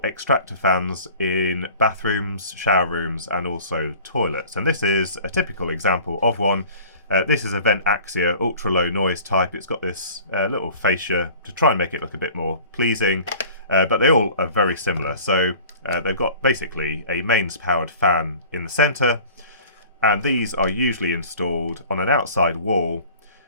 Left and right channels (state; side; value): inverted; both; correlation -0.45